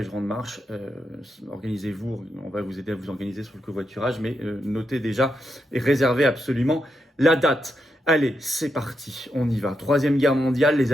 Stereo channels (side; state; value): both; normal; correlation 0.84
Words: grande marche. Organisez-vous, on va vous aider à vous organiser sur le covoiturage, mais notez déjà et réservez absolument la date. Allez, c'est parti, on y va. Troisième guerre mondiale, les